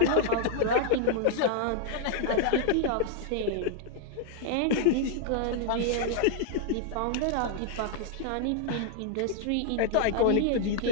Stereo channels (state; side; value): different; both; correlation 0.00